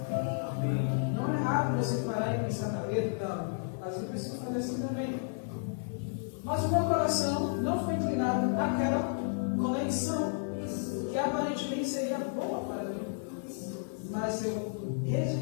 Não é errado você parar e pensar na letra, às vezes eu preciso fazer assim também. Mas o meu coração não foi inclinado naquela conexão que aparentemente seria boa para mim. Mas eu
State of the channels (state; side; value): silent; right; digital silence